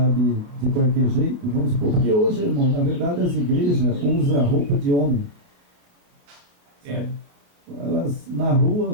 de qualquer jeito, vamos supor, porque hoje, irmão, na verdade as igrejas usam roupa de homem. É. Sabe? Elas, na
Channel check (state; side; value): late; left; 28 ms